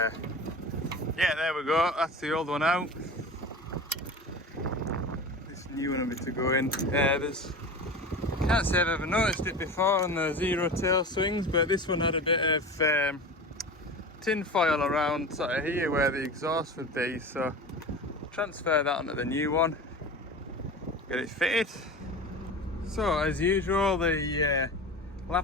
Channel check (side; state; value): both; normal; correlation 0.32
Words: yeah, there we go, that's the old one out. This new one will be to go in. Can't say I've ever noticed it before on the zero tail swings, but this one had a bit of tin foil around sort of here where the exhaust would be, so transfer that onto the new one, get it fitted. So as usual, the